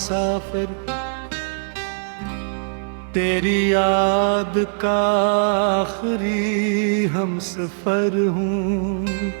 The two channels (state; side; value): silent; left; digital silence